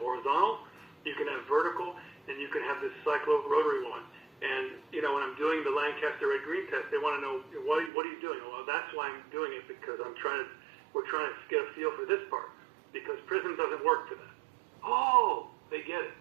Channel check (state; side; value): drops out; left; at 7.9 s